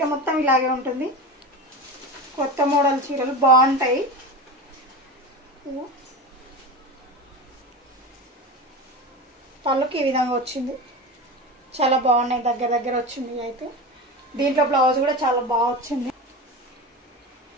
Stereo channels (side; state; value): both; normal; correlation 0.25